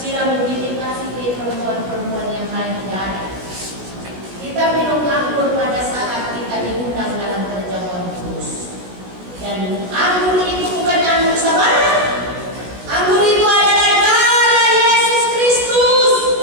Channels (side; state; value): left; late; 16 ms